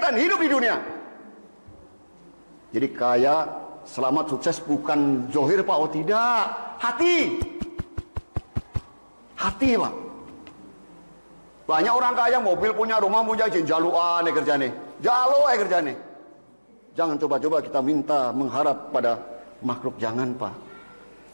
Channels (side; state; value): both; inverted; correlation -1.00